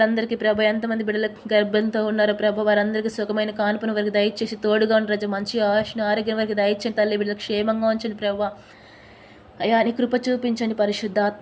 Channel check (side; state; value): both; identical; correlation 1.00